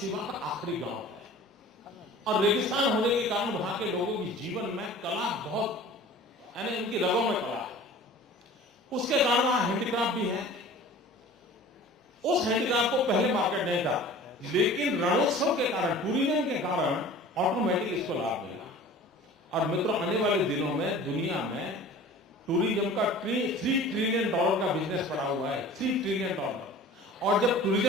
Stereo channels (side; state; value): both; normal; correlation 0.43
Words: का आखिरी गांव है, और रेगिस्तान होने के कारण वहां के लोगों की जीवन में कला बहुत, यानी उनकी रगों में कला है, उसके कारण वहां हैंडीक्राफ्ट भी है। उस हैंडीक्राफ्ट को पहले मार्केट नहीं था, लेकिन रणोत्सव के कारण, टूरिज्म के कारण ऑटोमेटिक इसको लाभ मिला। और मित्रों, आने वाले दिनों में दुनिया में टूरिज्म का $3 ट्रिलियन का बिजनेस पड़ा हुआ है, $3 ट्रिलियन। और जब